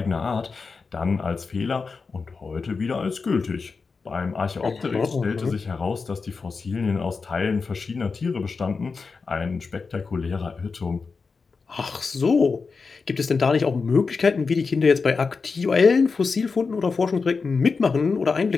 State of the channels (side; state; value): right; quieter; 4.7 dB